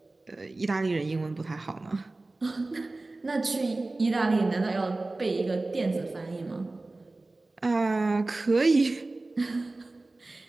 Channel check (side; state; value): left; quieter; 3.1 dB